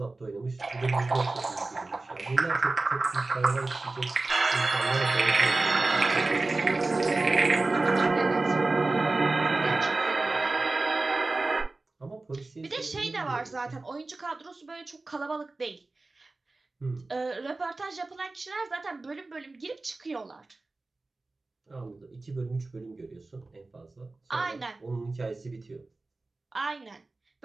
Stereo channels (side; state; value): left; quieter; 3.3 dB